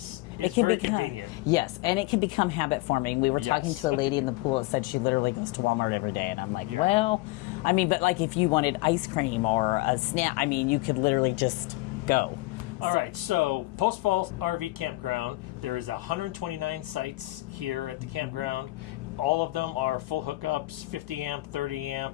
very convenient. Yes, and it can become habit forming. We were talking to a lady in the pool that said she literally goes to Walmart every day, and I'm like, well, I mean, but like if you wanted ice cream or a snack, I mean, you could literally just go. All right, so Post Falls RV Campground, there is 129 sites here at the campground. All of them are full hookups, 50 amp, 30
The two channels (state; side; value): quieter; right; 20.6 dB